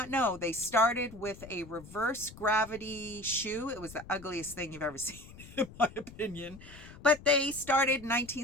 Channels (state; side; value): noise; left; rumble, 17 dB below the sound